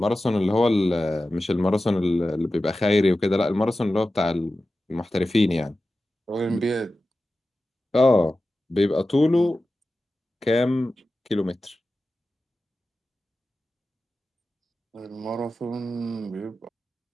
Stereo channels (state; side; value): normal; both; correlation 0.94